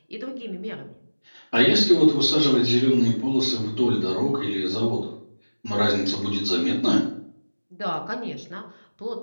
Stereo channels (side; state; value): both; inverted; correlation -1.00